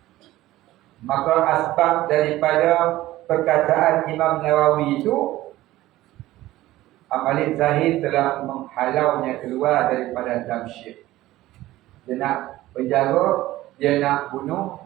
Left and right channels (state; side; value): quieter; left; 16.2 dB